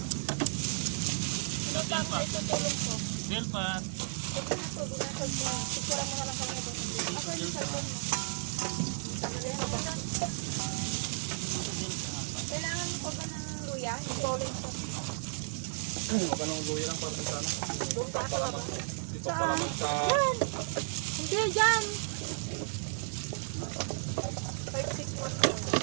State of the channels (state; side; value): silent; left; 55 dB below the other